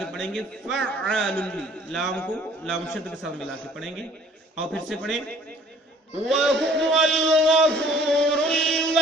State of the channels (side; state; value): both; normal; correlation 0.55